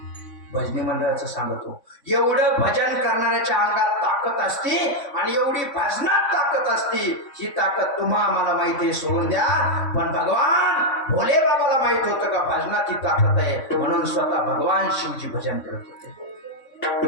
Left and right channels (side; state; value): right; late; 3.5 ms